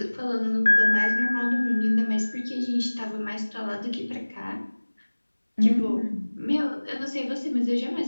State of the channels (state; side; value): inverted; both; correlation -1.00